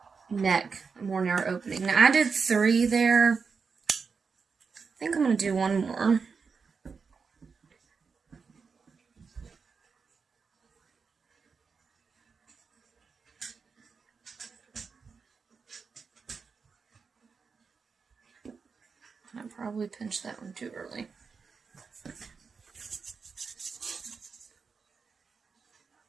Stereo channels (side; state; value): left; quieter; 5.3 dB